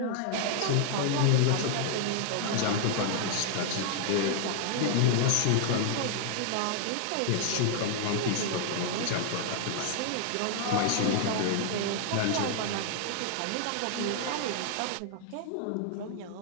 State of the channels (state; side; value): different; both; correlation 0.00